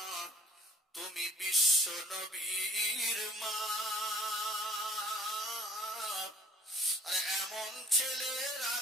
তুমি বিশ্ব নবীর মা। আরে এমন ছেলে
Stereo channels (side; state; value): both; normal; correlation 0.53